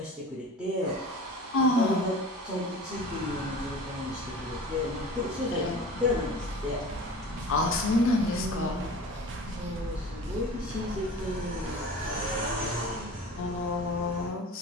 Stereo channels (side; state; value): both; normal; correlation 0.38